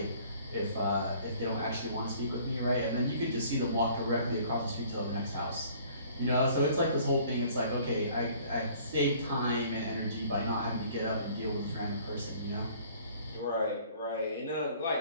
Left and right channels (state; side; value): inverted; both; correlation -0.54